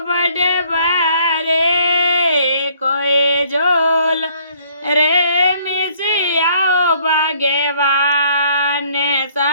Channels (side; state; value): both; inverted; correlation -0.62